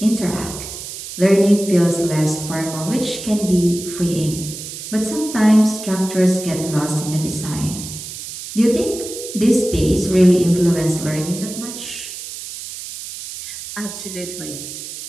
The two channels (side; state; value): right; noise; hiss, 10 dB below the sound